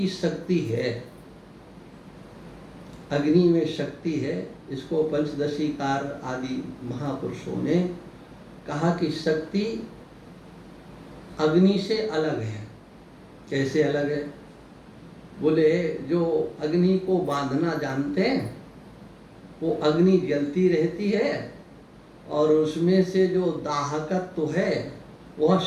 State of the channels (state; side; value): identical; both; correlation 1.00